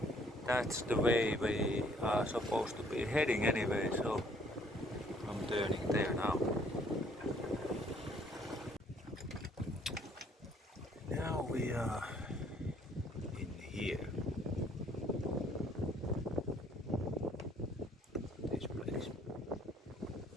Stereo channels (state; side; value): normal; both; correlation 0.62